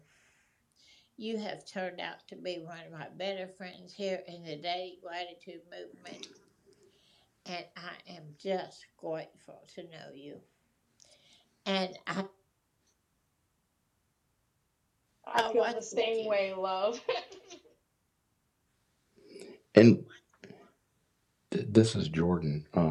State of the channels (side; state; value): both; identical; correlation 1.00